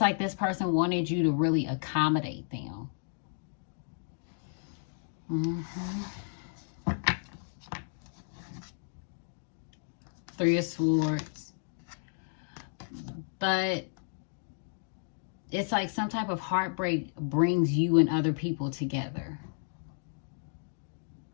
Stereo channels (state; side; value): silent; right; digital silence